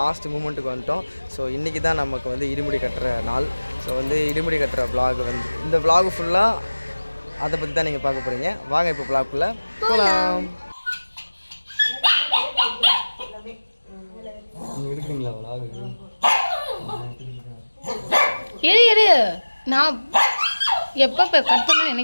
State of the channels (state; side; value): inverted; both; correlation -1.00